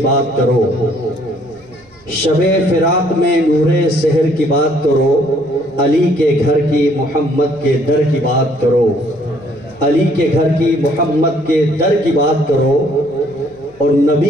بات کرو، شب فراق میں نور سحر کی بات کرو، علی کے گھر کی محمد کے در کی بات کرو، علی کے گھر کی محمد کے در کی بات کرو، اور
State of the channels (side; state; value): right; noise; hum, 30 dB below the sound